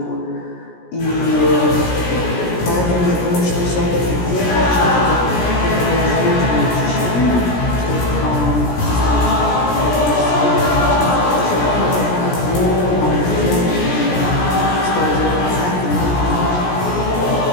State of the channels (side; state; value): right; late; 17 ms